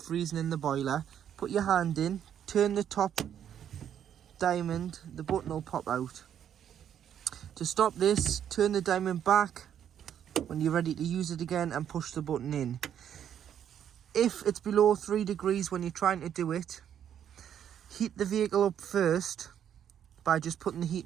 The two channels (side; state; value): left; quieter; 9.5 dB